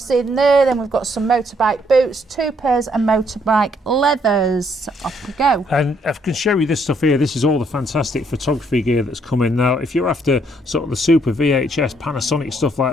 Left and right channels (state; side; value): normal; both; correlation 0.69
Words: in there, then we've got some motorbike boots, 2 pairs of motorbike leathers. Off we go. And I can show you this stuff here. This is all the fantastic photography gear that's coming now. If you're after sort of the super VHS, Panasonic stuff